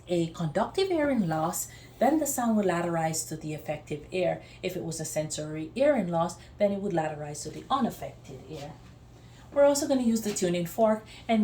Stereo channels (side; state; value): both; identical; correlation 1.00